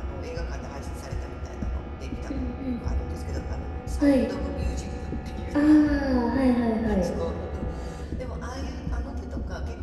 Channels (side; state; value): both; identical; correlation 1.00